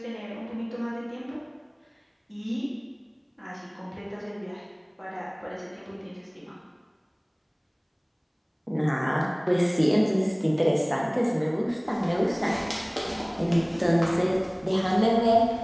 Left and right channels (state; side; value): identical; both; correlation 1.00